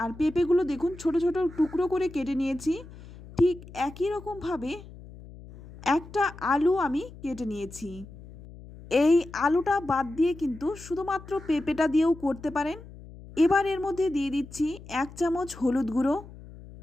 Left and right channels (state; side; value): noise; left; hum, 17 dB below the sound